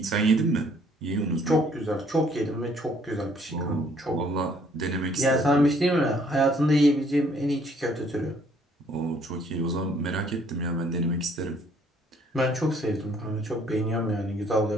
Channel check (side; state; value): both; normal; correlation 0.62